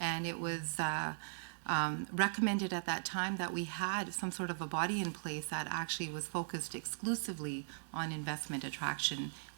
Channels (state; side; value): silent; left; 52 dB below the other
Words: and it was recommended at that time that we had some sort of a body in place that actually was focused exclusively on investment attraction,